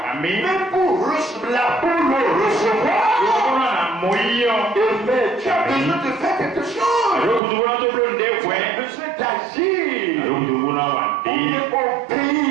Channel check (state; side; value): drops out; left; at 7.4 s